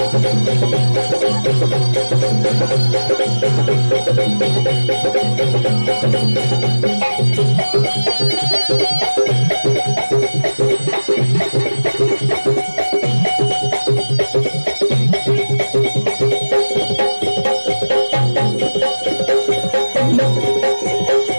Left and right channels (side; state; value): both; inverted; correlation -1.00